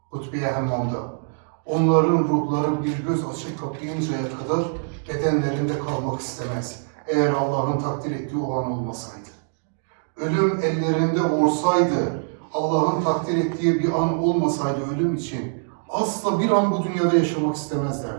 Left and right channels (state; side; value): silent; left; digital silence